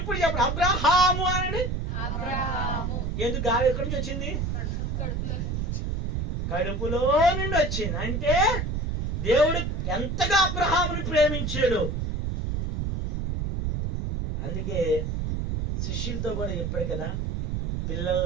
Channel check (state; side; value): noise; right; rumble, 2 dB below the sound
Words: చెప్పండి. అబ్రాహాము అనండి. ఎందుకు గాలి ఎక్కడి నుంచి వచ్చింది? కడుపులో నుండి వచ్చింది. అంటే దేవుడు ఎంతగా అబ్రహాముని ప్రేమించాడు. అందుకే శిష్యులతో కూడా చెప్పాడు కదా,